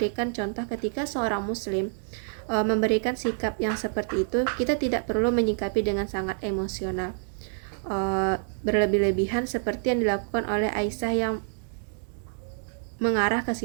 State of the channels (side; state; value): left; silent; 60 dB below the other